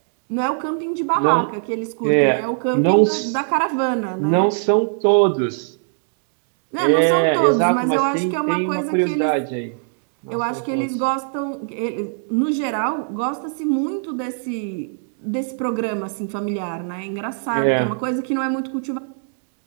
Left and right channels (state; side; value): silent; left; digital silence